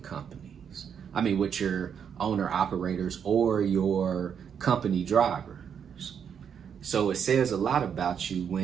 I mean, with your owner operators or your company drivers. So it says a lot about you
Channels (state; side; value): quieter; left; 7.7 dB